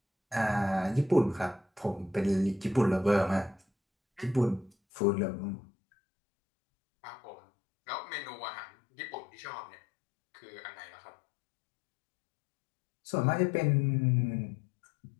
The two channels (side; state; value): right; drops out; at 4.7 s